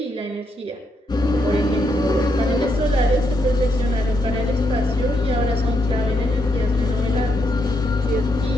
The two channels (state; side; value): normal; both; correlation 0.79